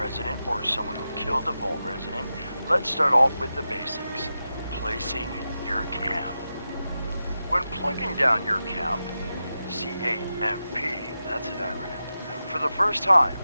or someone who killed a Vault resident, let's start off with the basics. Placing your camp. When plunking down your camp, C-A-M-P, that's an acronym, for the first time,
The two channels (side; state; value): both; inverted; correlation -0.91